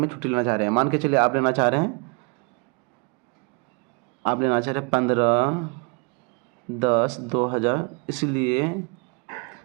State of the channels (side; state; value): left; quieter; 34.1 dB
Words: छुट्टी लेना चाह रहे हैं, मान के चलिए आप लेना चाह रहे हैं 15/10/2000, इसलिए